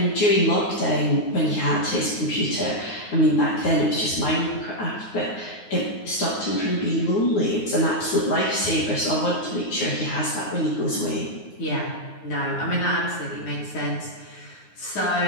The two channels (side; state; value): right; late; 9.5 ms